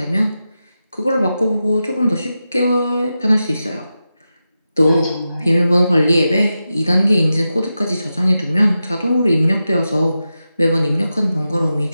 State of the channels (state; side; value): inverted; both; correlation -0.91